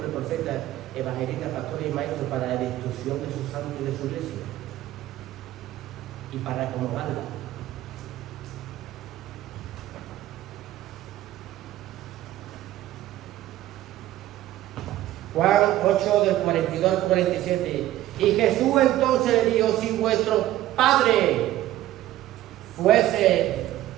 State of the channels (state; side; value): quieter; left; 14.3 dB